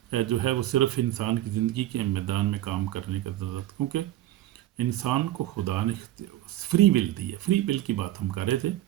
جو ہے وہ صرف انسان کی زندگی کے میدان میں کام کرنے کا ضرورت، کیونکہ انسان کو خدا نے فری ول دی ہے. فری ول کی بات ہم کر رہے تھے،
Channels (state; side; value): quieter; left; 14.3 dB